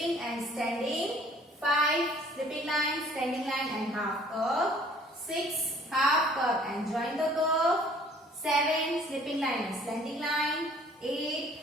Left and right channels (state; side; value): normal; both; correlation 0.56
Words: and standing. 5, slipping line, standing line and half curve. 6, half curve and join the curve. 7, slipping line and slanting line. 8,